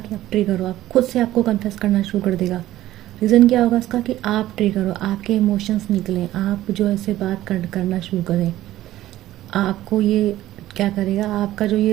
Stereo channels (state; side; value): quieter; left; 14.6 dB